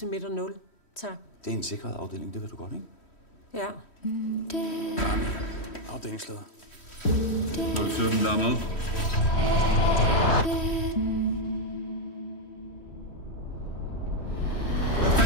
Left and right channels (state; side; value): late; right; 3.1 ms